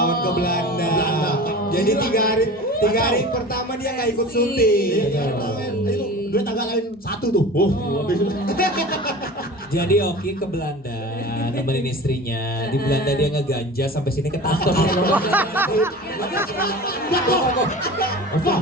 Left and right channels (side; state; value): both; normal; correlation 0.36